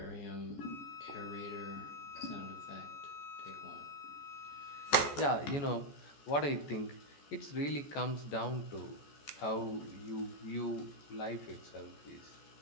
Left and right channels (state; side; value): late; right; 14 ms